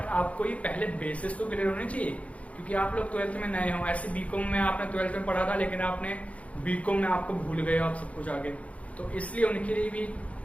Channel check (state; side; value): late; right; 0.065 ms